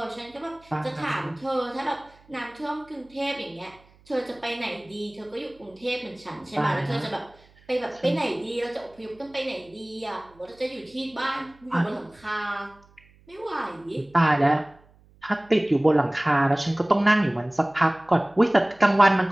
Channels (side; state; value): right; noise; hum, 29 dB below the sound